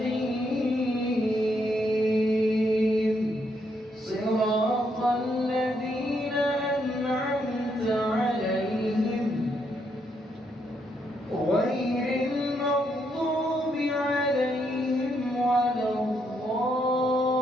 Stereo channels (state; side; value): normal; both; correlation 0.76